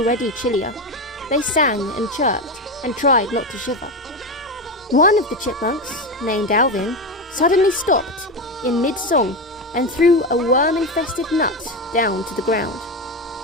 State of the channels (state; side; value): normal; both; correlation 0.16